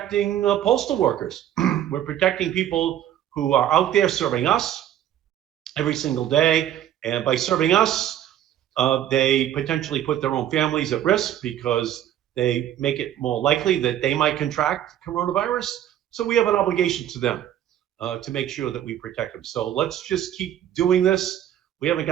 postal workers. We're protecting people who are out there serving us every single day. And by serving us, they potentially put their own families at risk because they make it more likely that they might contract coronavirus. So we have an obligation to them to make sure that we protect them. So let's just keep doing this. We haven't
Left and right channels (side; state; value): left; quieter; 11.3 dB